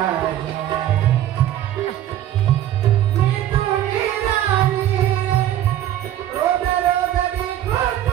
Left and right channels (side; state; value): left; quieter; 12.1 dB